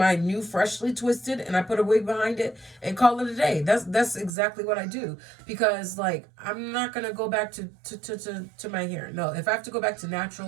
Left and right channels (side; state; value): left; drops out; at 4.3 s